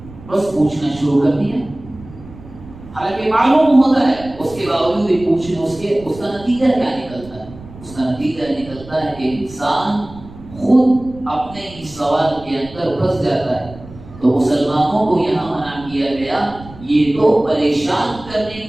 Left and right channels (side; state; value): right; noise; rumble, 18 dB below the sound